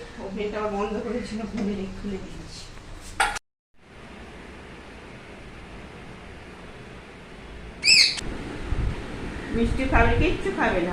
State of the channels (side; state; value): both; identical; correlation 1.00